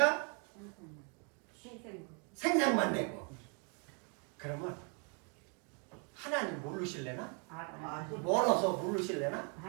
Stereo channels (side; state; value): left; quieter; 37.2 dB